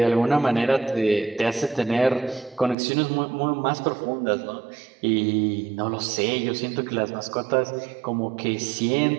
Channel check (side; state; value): left; drops out; at 2.8 s